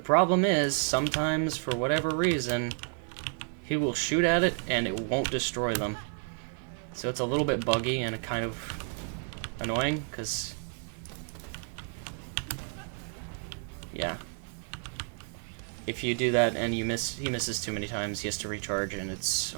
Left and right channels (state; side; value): silent; left; 55 dB below the other